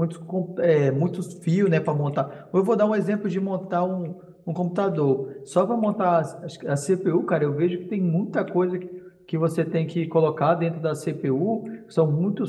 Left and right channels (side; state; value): both; identical; correlation 1.00